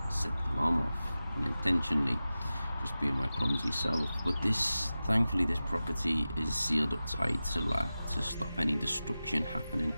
set the alarm off unintentionally, just being my clumsy self. But thankfully, this property is sealed up tight to stop any destruction happening.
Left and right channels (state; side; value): inverted; both; correlation -0.95